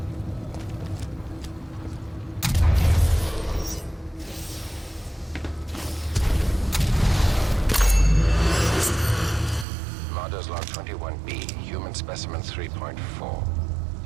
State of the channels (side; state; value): left; drops out; at 9.7 s